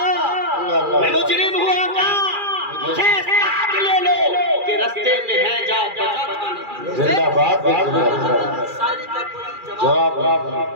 میں مجرم ہوا تھا. مجھے ساتھ لے لو کہ رستے میں ہے جا بچا کھانے. زندہ باد. شاعری کا کوئی جواب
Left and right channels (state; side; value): late; left; 2.4 ms